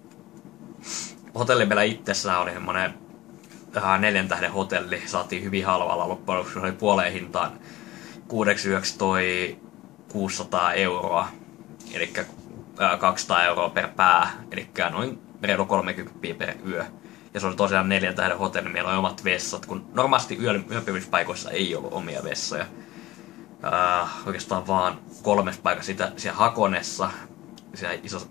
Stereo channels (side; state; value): right; quieter; 17.3 dB